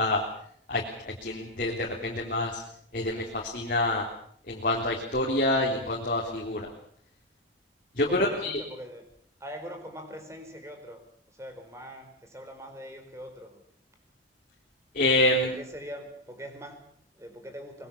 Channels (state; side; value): normal; both; correlation 0.00